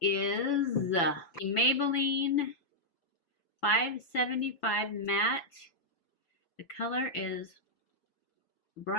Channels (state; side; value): late; right; 5.9 ms